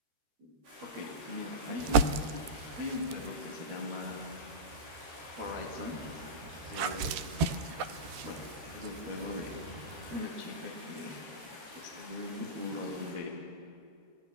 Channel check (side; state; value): left; late; 13 ms